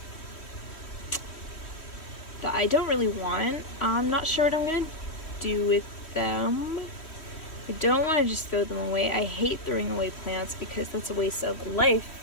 that I don't really want. I'm not sure what I'm going to do with them. I don't want to just throw them away. I hate throwing away plants because that's a waste of life,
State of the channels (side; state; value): right; late; 3.1 ms